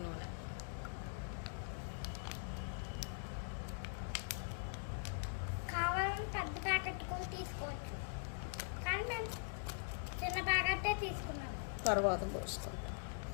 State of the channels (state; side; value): silent; right; digital silence